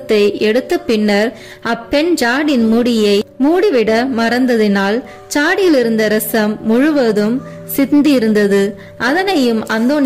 எடுத்த பின்னர் அப்பெண் ஜாடின் மூடியை மூடிவிட மறந்ததினால் சாடியில் இருந்த ரசம் முழுவதும் சிந்தியிருந்தது. அதனையும்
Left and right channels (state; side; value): identical; both; correlation 1.00